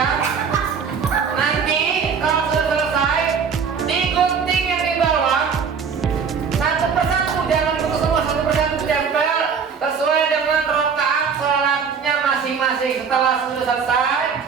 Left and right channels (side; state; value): left; quieter; 6.3 dB